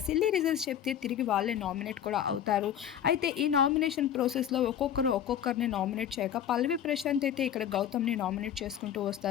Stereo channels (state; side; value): quieter; right; 9.8 dB